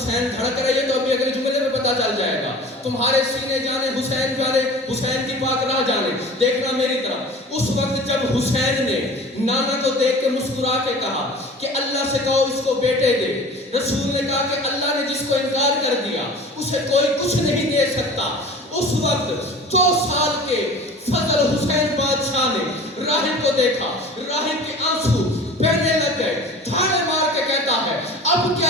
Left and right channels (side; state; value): both; normal; correlation 0.41